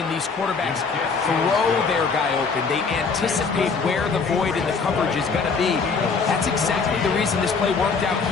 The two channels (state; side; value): quieter; right; 5.0 dB